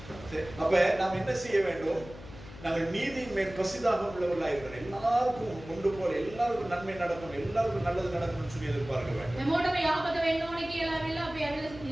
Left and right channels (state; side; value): noise; left; hum, 16 dB below the sound